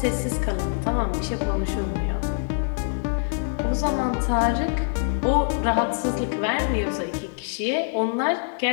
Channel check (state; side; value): silent; right; 62 dB below the other